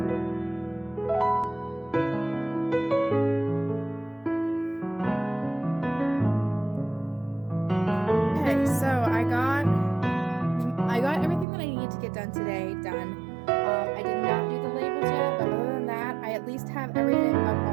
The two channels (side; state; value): left; drops out; at 11.5 s